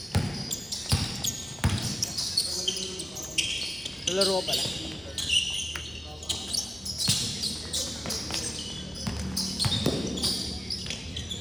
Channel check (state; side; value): normal; both; correlation 0.97